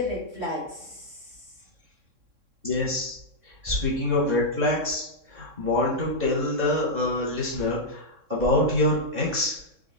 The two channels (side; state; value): left; late; 3.6 ms